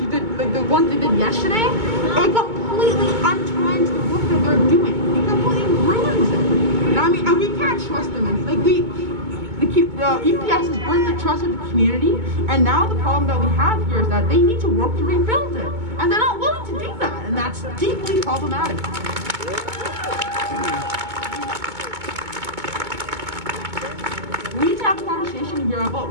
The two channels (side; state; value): left; late; 2.2 ms